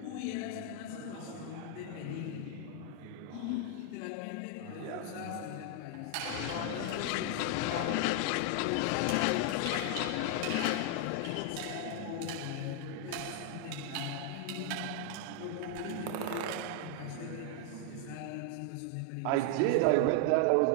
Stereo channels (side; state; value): both; different; correlation 0.00